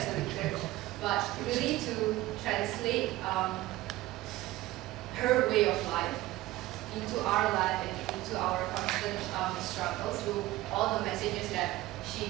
Church, but really to translate her way of life into our life and into our constant struggles through all the messages that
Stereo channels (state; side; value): quieter; left; 17.3 dB